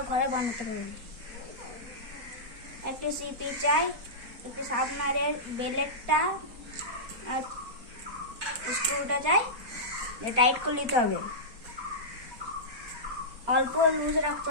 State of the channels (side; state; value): left; late; 4.3 ms